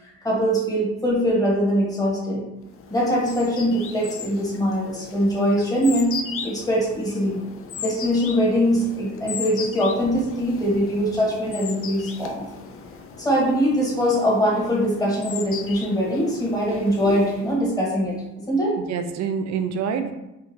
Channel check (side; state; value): both; normal; correlation 0.50